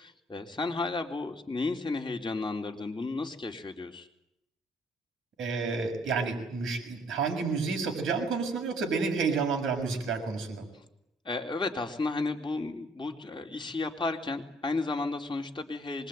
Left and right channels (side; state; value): both; normal; correlation 0.62